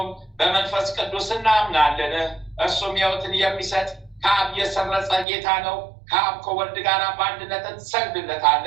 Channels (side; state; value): left; drops out; at 5.2 s